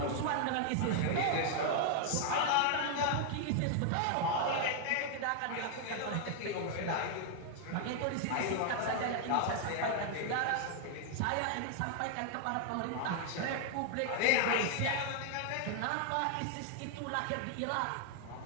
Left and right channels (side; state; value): both; different; correlation 0.00